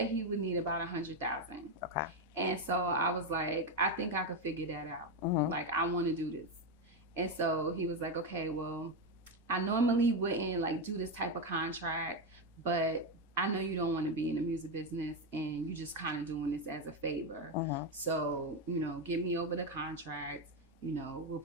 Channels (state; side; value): normal; both; correlation 0.09